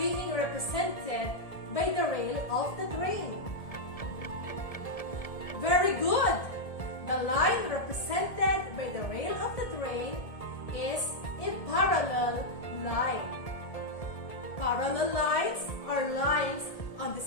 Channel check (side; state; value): right; late; 1.7 ms